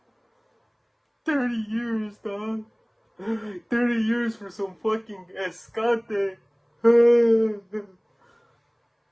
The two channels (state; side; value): identical; both; correlation 1.00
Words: years, dog. 30 years for some fucking escante.